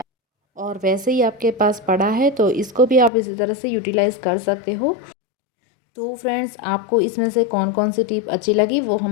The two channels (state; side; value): drops out; right; at 3.1 s